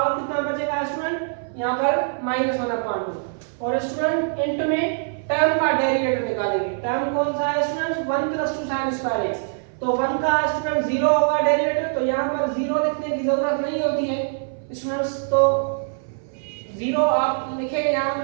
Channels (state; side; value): silent; left; 59 dB below the other